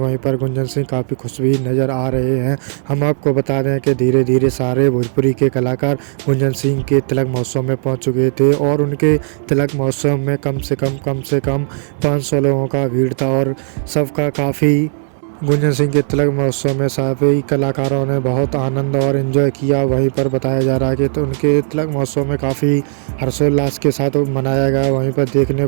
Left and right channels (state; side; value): silent; left; digital silence